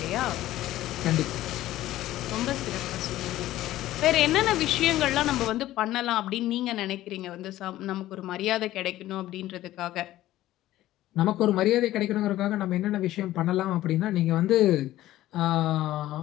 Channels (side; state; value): right; quieter; 14.9 dB